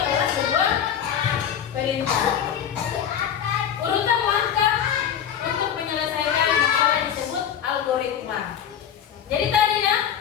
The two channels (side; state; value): right; quieter; 9.1 dB